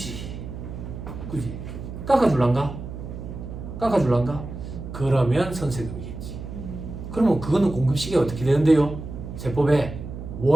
깎아줄란가? 그러면 선세금이겠지. 그러면 그거는 공급 시기가 어떻게 되는데요? 세법에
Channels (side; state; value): right; noise; hum, 9 dB below the sound